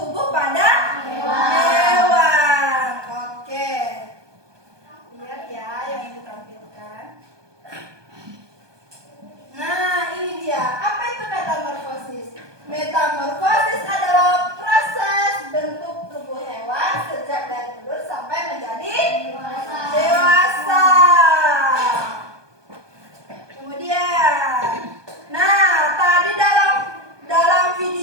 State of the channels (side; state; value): left; late; 1.2 ms